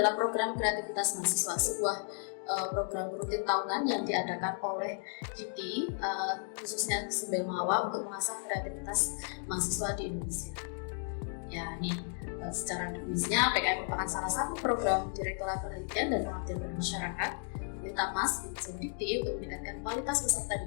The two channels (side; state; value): right; silent; 55 dB below the other